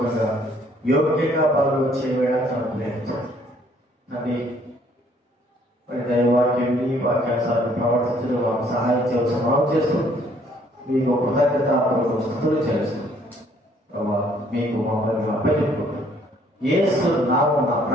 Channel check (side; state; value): both; normal; correlation 0.62